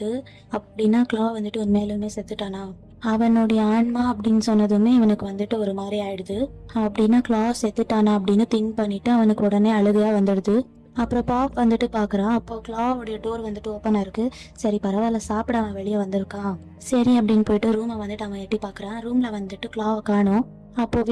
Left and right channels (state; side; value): identical; both; correlation 1.00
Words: அப்படின்னா கிளா வந்துட்டு உண்மையிலுமே செத்துட்டானா, அவனுடைய ஆன்மா அப்படின்னு சொன்னதுமே இவனுக்கு வந்துட்டு ஒரு மாதிரி ஆயிடுது. அப்படின்னா கிளா செத்துட்டானா அப்படின்னு திங்க் பண்ணிட்டு அவனுக்கு உடனே அழுகையா வந்துடுது. அப்புறம் பாப் வந்துட்டு பார்க்குறான். அப்போ கிளாவோடைய டோர் வந்துட்டு ஓப்பனாக இருக்குது. சரி பரவாயில்ல, சாப்பிட அவன் வெளியே வந்திருக்கான், சரி அப்படின்னு போயிட்டு ரூமை வந்துட்டு அவன் எட்டி பார்க்குறான். ரூமில் வந்துட்டு கிளாவை காணோம். அப்போது